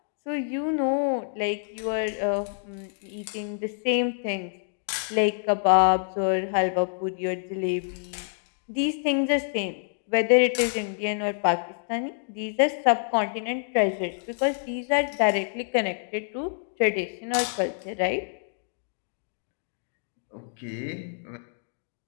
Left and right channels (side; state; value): right; silent; digital silence